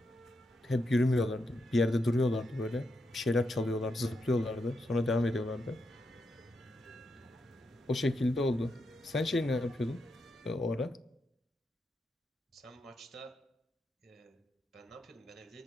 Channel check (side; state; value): both; normal; correlation 0.84